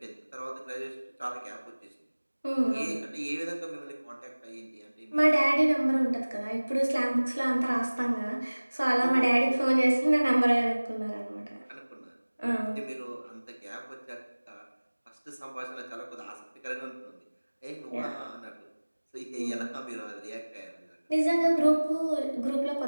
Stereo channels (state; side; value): inverted; both; correlation -1.00